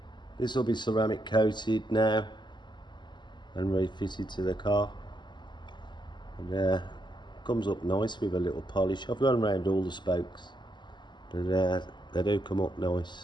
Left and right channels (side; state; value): right; late; 0.22 ms